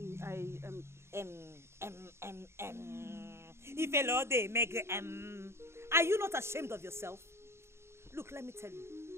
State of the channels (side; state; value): left; late; 0.13 ms